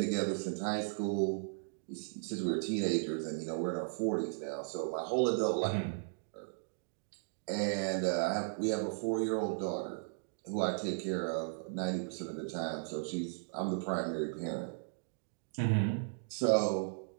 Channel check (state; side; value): silent; left; digital silence